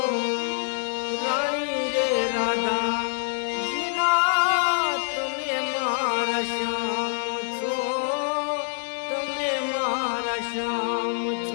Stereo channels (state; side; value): silent; right; digital silence